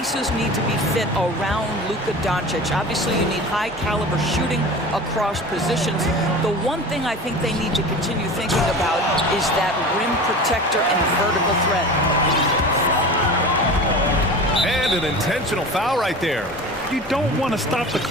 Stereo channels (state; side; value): normal; both; correlation 0.34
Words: need to be fit around Luka Doncic. Obviously, you need high-caliber shooting across positions. The one thing I think they need to continue thinking about is that rim protector and vertical threat. And an intentional foul right there. You don't want to stop the